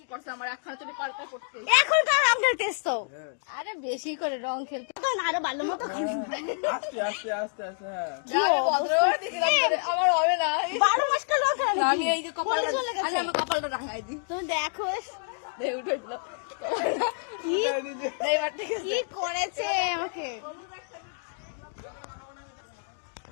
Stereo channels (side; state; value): right; silent; digital silence